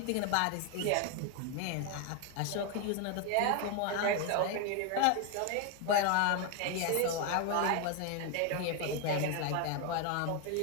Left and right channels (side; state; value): both; different; correlation 0.01